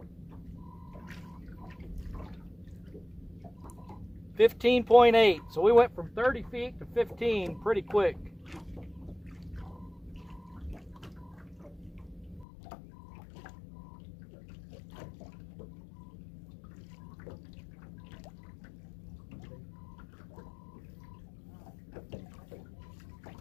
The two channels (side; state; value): right; drops out; at 12.5 s